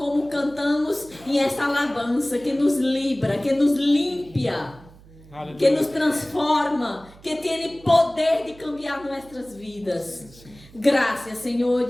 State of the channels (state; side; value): noise; right; hum, 23 dB below the sound